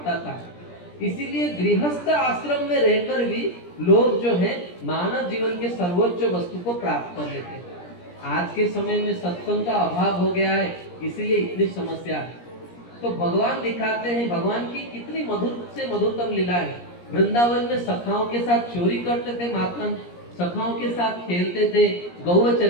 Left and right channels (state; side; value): late; right; 17 ms